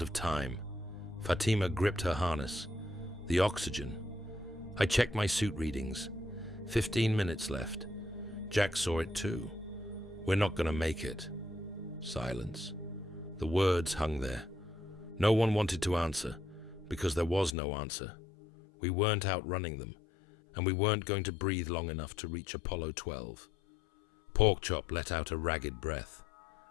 time. Fatima gripped her harness. The oxygen. I checked my suit readings. 15 minutes left. Jack saw it too. We're not going to make it. Silence. The words hung there. No one wanted to answer, because there was no answer. We weren't outrunning them, and we weren't going to breathe long enough to reach Apollo 12. Porkchop let out a ragged breath.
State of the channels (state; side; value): drops out; right; at 17.6 s